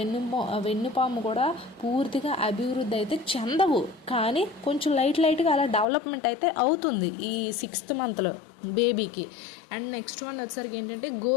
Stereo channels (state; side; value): drops out; right; at 5.9 s